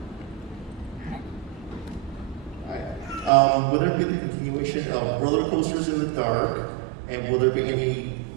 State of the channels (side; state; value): left; drops out; at 3.3 s